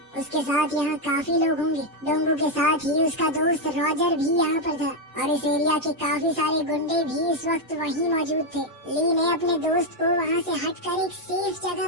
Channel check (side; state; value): both; normal; correlation 0.04